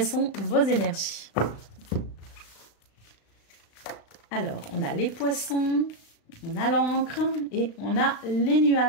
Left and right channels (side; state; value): right; late; 35 ms